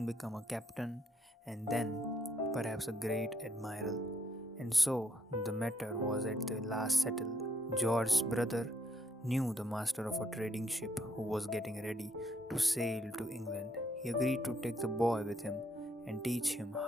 become a captain and then perhaps a great admiral. And so the matter was at the last settled. George's brother knew the master of a trading ship who was getting ready to sail to England. He agreed to take the boy with him and teach him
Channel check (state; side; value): normal; both; correlation 0.71